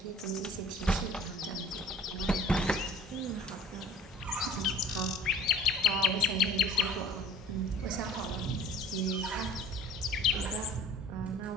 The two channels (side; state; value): both; normal; correlation 0.45